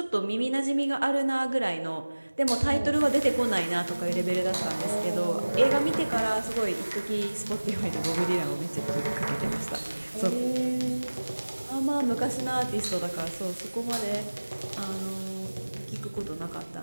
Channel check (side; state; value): both; inverted; correlation -1.00